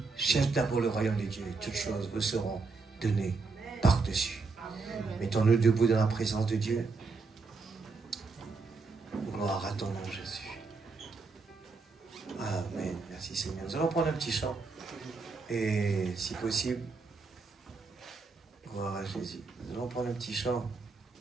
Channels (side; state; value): left; quieter; 4.3 dB